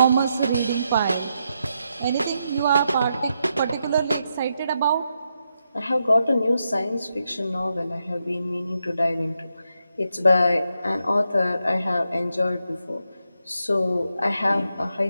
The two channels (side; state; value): both; inverted; correlation -0.83